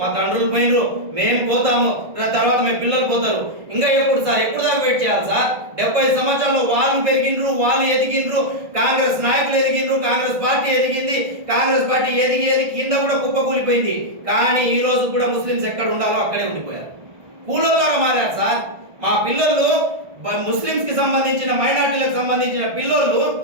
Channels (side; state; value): left; late; 1.5 ms